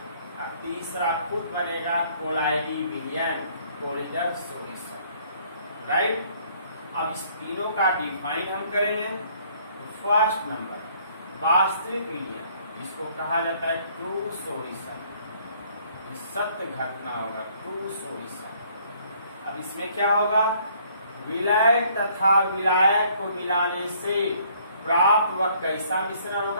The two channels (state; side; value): inverted; both; correlation -0.62